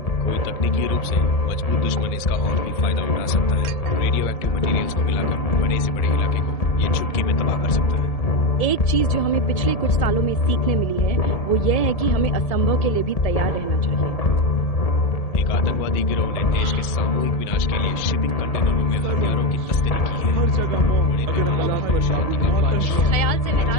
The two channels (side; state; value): right; late; 1.7 ms